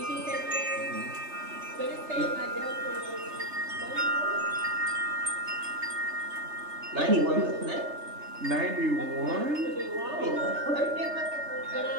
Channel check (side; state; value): left; late; 3.3 ms